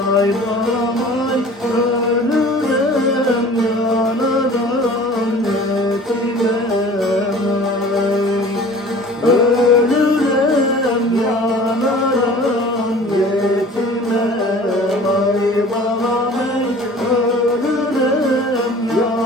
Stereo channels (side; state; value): both; normal; correlation 0.45